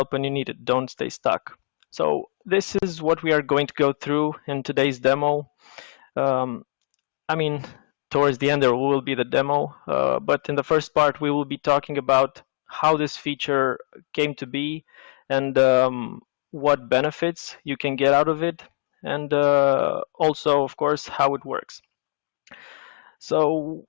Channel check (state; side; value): silent; right; digital silence